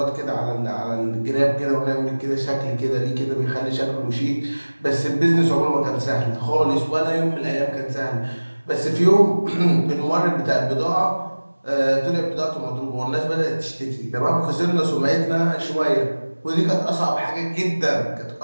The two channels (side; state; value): both; inverted; correlation -1.00